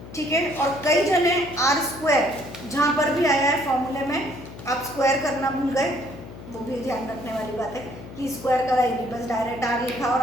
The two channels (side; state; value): left; noise; hum, 14 dB below the sound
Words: ठीक है। और कई जने आर स्क्वायर जहाँ पर भी आया है फॉर्मूले में आप स्क्वायर करना भूल गए, वो भी ध्यान रखने वाली बात है कि स्क्वायर करा ही नहीं, बस डायरेक्ट आर लिखा और